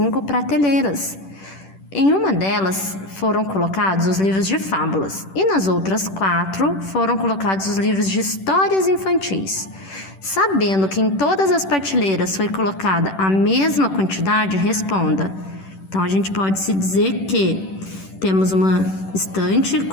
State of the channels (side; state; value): right; late; 10 ms